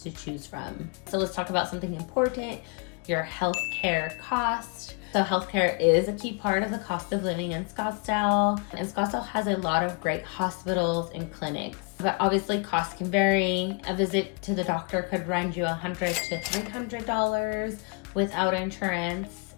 to choose from. So let's talk about something important, your healthcare cost. So healthcare is a key part of the cost of living in Scottsdale. And Scottsdale has a lot of great hospitals and clinics. But obviously costs can vary. A visit to the doctor could run you $100 to $300 without insurance.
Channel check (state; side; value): quieter; right; 33.8 dB